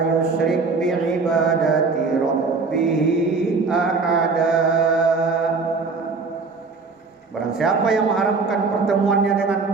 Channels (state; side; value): quieter; left; 4.3 dB